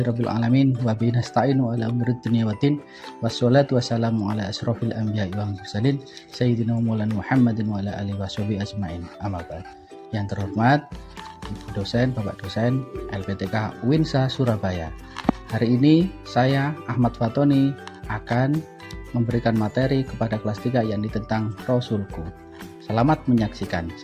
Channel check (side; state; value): both; identical; correlation 1.00